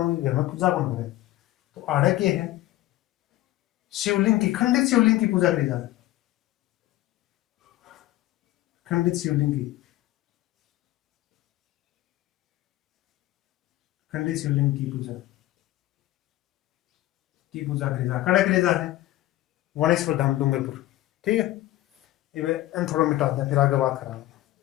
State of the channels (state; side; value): quieter; right; 16.0 dB